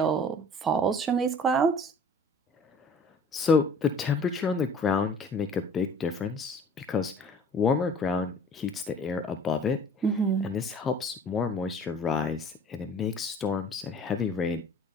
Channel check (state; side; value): normal; both; correlation 0.49